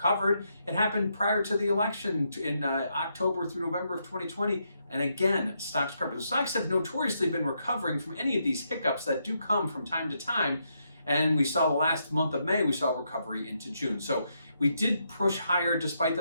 It happened prior to the election in October through November of 2020, and again, stocks recovered. So stocks have notoriously been recovering from any of these hiccups that do come from time to time. And we saw the last month of May, we saw recovery into June. So we did push higher despite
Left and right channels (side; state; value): both; inverted; correlation -0.79